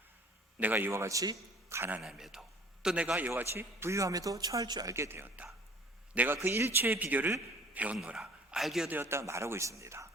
내가 이와 같이 가난함에도 또 내가 이와 같이 부유함에도 처할 줄 알게 되었다. 내가 그 일체의 비결을 배웠노라, 알게 되었다 말하고 있습니다.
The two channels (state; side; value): normal; both; correlation 0.51